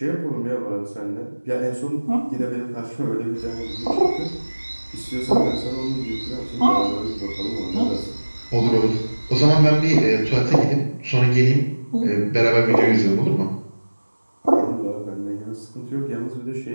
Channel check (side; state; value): both; inverted; correlation -1.00